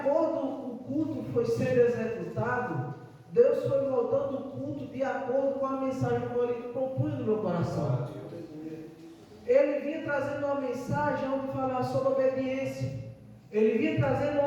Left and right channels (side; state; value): both; identical; correlation 1.00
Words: com o culto foi sendo executado, Deus foi moldando o culto de acordo com a mensagem que ele propunha no meu coração. Ele vinha trazendo uma mensagem onde falava sobre obediência. Ele vinha trazendo